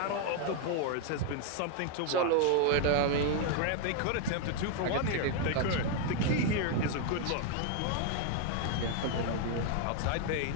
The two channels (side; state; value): both; different; correlation 0.01